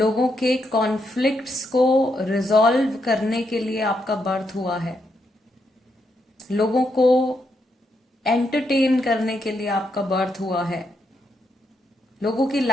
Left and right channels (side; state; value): both; normal; correlation 0.80